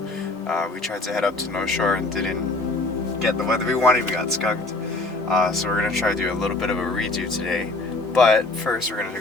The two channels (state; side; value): quieter; right; 3.1 dB